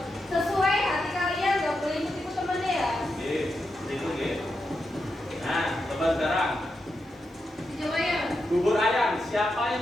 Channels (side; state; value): both; normal; correlation 0.86